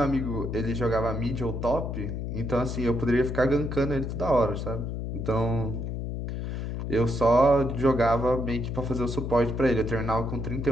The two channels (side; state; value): left; noise; hum, 4 dB below the sound